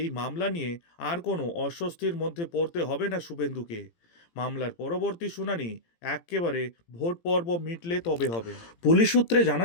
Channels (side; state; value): right; late; 18 ms